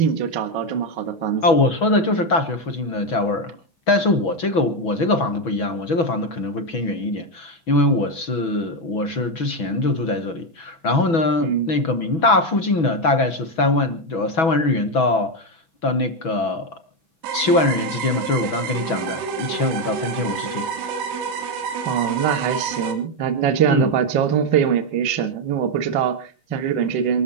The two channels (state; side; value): late; right; 6.1 ms